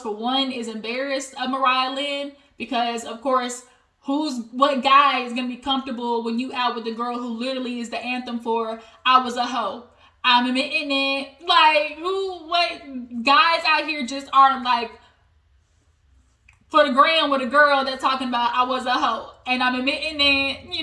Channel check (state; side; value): identical; both; correlation 1.00